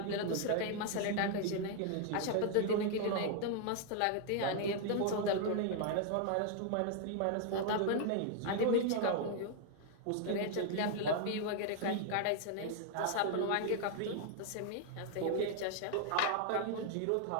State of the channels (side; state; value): both; different; correlation 0.00